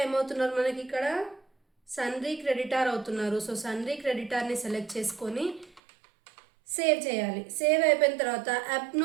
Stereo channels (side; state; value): left; drops out; at 5.8 s